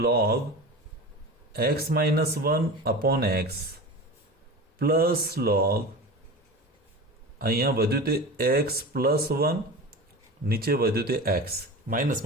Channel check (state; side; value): normal; both; correlation 0.31